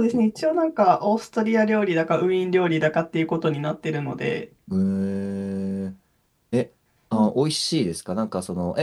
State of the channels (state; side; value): identical; both; correlation 1.00